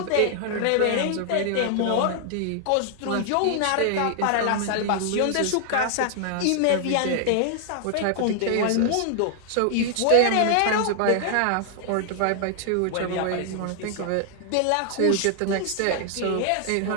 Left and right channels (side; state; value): both; different; correlation 0.00